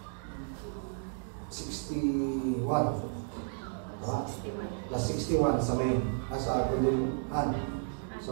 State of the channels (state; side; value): silent; left; digital silence